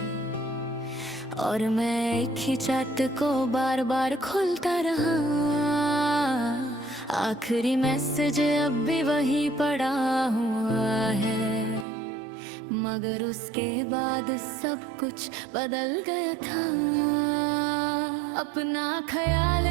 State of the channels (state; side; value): drops out; left; at 11.9 s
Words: और मैं एक ही चैट को बार बार खोलता रहा। आखिरी मैसेज अब भी वही पड़ा हुआ है, मगर उसके बाद सब कुछ बदल गया था। अपना ख्याल